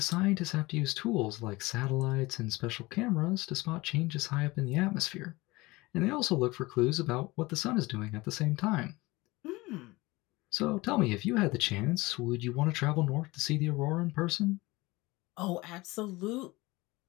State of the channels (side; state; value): right; quieter; 21.7 dB